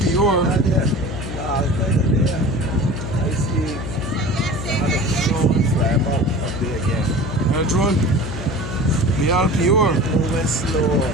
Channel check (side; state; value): left; noise; hum, 7 dB below the sound